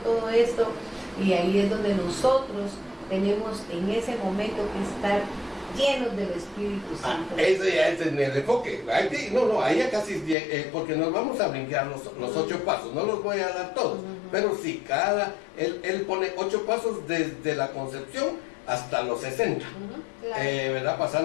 todo esto. Y ahí es donde nosotros tenemos en ese momento que estar llenos del Espíritu Santo. Eso ya es en el enfoque. Ahí ya casi, porque nos vamos a brincar los 8 pasos, no los voy a dar todos, pero sí, él pone 8 pasos desde la concepción hasta los 60, claro. ¿Verdad?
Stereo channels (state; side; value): drops out; right; at 10.4 s